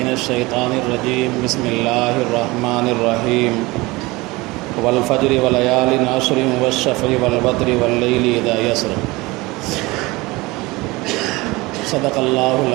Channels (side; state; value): left; quieter; 22.3 dB